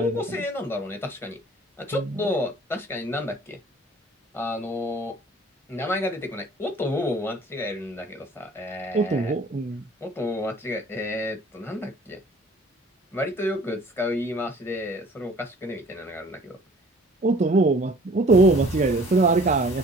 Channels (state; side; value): normal; both; correlation 0.52